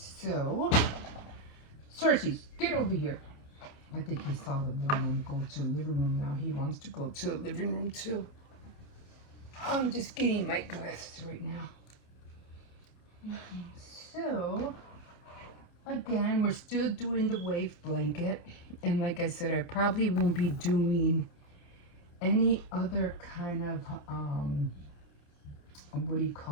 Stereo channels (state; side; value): late; right; 28 ms